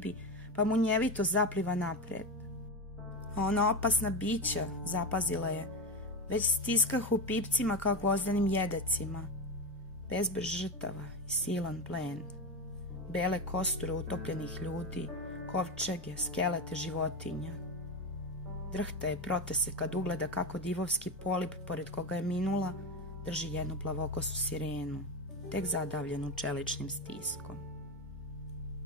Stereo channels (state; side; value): normal; both; correlation 0.16